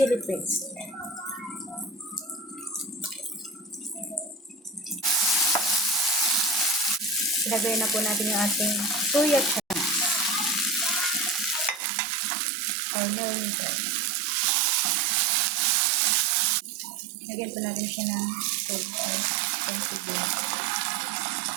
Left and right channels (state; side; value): drops out; left; at 11.8 s